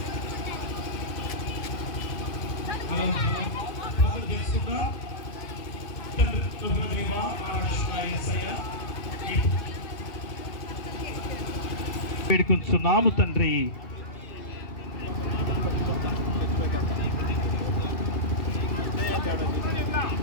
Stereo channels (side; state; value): right; late; 2.6 ms